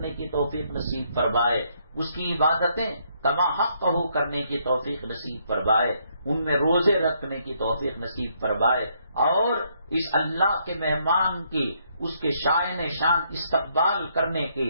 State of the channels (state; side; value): inverted; both; correlation -0.71